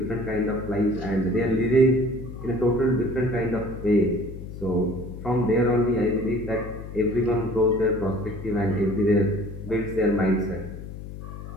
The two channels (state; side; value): noise; left; hum, 11 dB below the sound